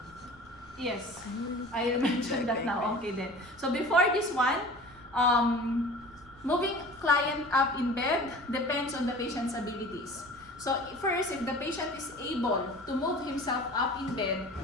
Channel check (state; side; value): noise; right; rumble, 24 dB below the sound